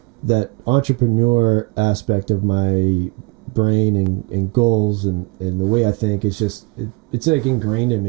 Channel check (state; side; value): quieter; left; 27.4 dB